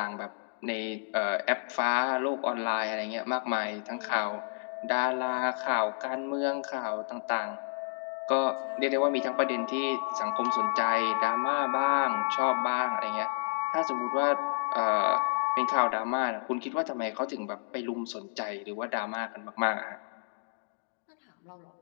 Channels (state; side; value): silent; right; digital silence